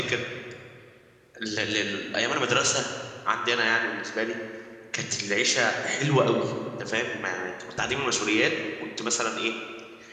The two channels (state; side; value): identical; both; correlation 1.00